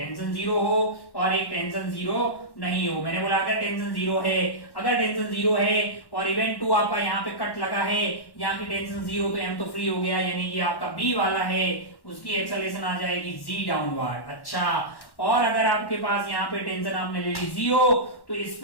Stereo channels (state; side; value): late; right; 1.1 ms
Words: हो और एक टेंशन जीरो नहीं हो। मैंने बोला अगर टेंशन जीरो है और इवेंट 2 आपका यहाँ पे कट लगा है, यहाँ की टेंशन जीरो, तो m तो फ्री हो गया, यानी कि आपका b वाला है उसकी एक्सेलरेशन आ जाएगी g डाउनवर्ड। अच्छा, और अगर आपके पास यहाँ पे टेंशन आपने ले ली 0, तो इस